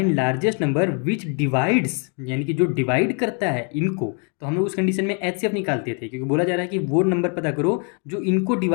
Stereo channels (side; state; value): right; quieter; 39.2 dB